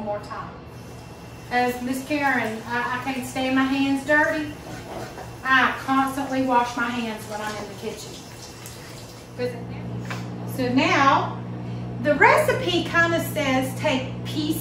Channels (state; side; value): identical; both; correlation 1.00